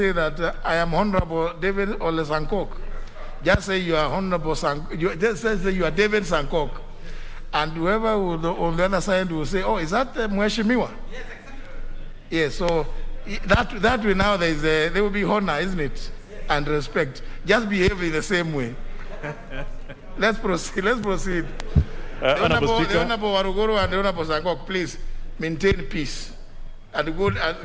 that I am Honorable David Ole Sankok. Just say you are Honorable Sankok. Just say you are David Sankok. And whoever on the other side will say, oh, is that Mheshimiwa? Yes, exactly. Yes, so that way now there will be honor, isn't it? Yes. And respect. Just behave in the same way. Let's proceed. The Honorable Warugoro and the Honorable Sankok, please maintain peace and good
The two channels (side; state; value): both; identical; correlation 1.00